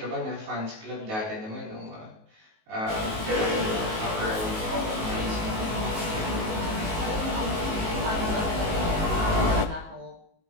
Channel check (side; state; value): left; late; 19 ms